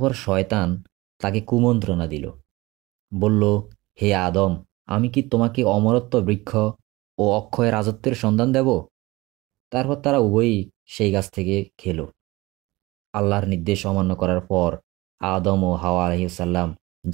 শয়তান তাকে কুমন্ত্রণা দিল, বলল, হে আদম, আমি কি তোমাকে অমরত্ব বৃক্ষ ও অক্ষয় রাজত্বের সন্ধান দেব? তারপর তারা উভয়ই সেই গাছ থেকে খেল। আল্লাহর নির্দেশ অমান্য করার পর আদম ও হাওয়া আলাইহিসসালাম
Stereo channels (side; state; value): left; quieter; 21.1 dB